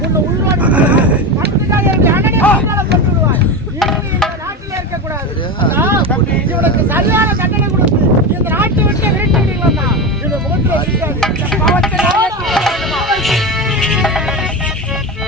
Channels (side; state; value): both; normal; correlation 0.20